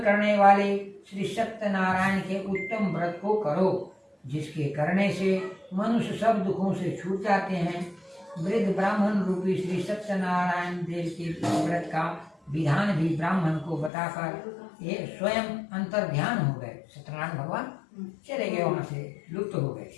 वाले श्री सत्यनारायण के उत्तम व्रत को करो, जिसके करने से मनुष्य सब दुखों से छूट जाते हैं। वृद्ध ब्राह्मण रूपी श्री सत्यनारायण देव के व्रत का विधान भी ब्राह्मण को बताकर ये स्वयं अंतर ध्यान हो गए। सत्यनारायण भगवान चले गए, वहां से लुप्त हो गए।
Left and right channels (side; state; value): right; drops out; at 13.9 s